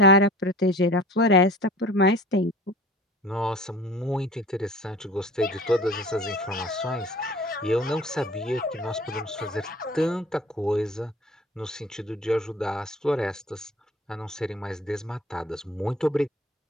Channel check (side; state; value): both; normal; correlation 0.43